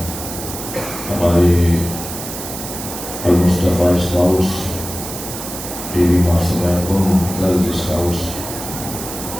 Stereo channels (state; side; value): noise; right; hiss, 9 dB below the sound